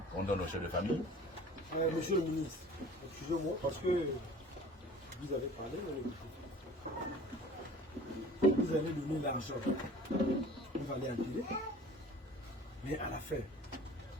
on donne aux chefs de famille. Monsieur le ministre, excusez-moi, parce que vous avez parlé, vous avez donné l'argent, vous allez enterrer, mais à la fin,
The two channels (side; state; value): both; normal; correlation 0.45